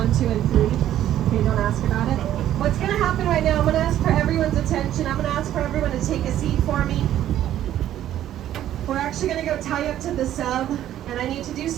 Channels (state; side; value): quieter; left; 12.0 dB